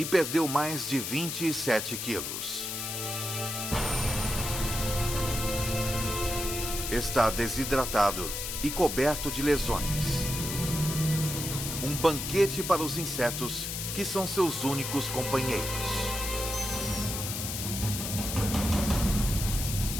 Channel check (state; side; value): noise; left; hiss, 4 dB below the sound